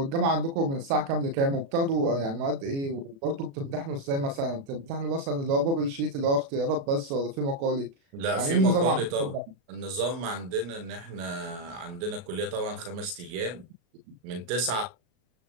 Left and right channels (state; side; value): late; left; 36 ms